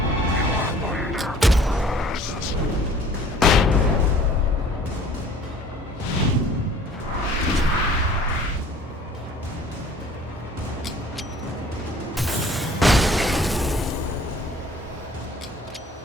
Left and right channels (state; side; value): normal; both; correlation 0.51